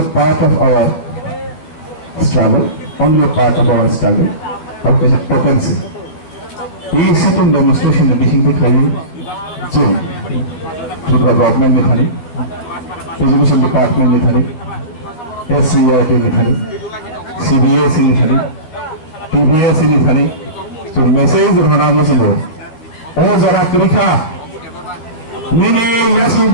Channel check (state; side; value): late; right; 13 ms